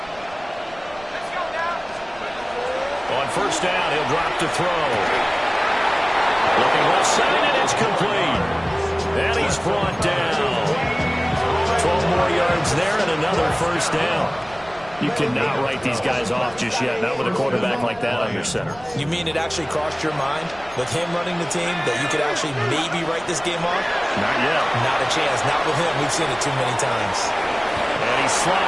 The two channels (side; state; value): right; noise; rumble, 23 dB below the sound